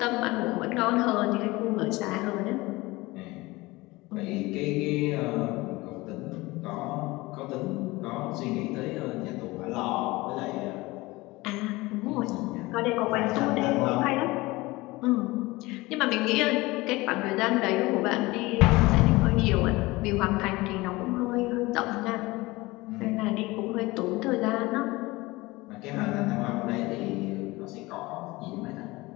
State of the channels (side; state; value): right; quieter; 21.3 dB